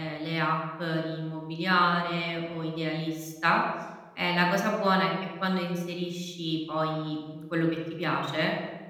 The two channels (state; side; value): identical; both; correlation 1.00